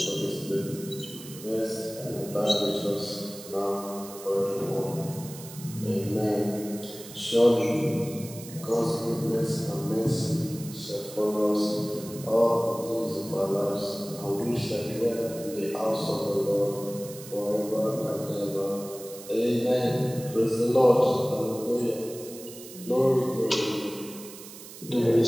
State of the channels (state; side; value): noise; right; hiss, 15 dB below the sound